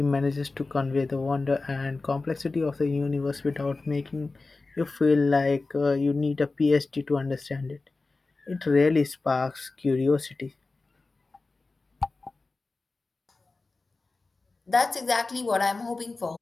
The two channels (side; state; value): right; quieter; 3.6 dB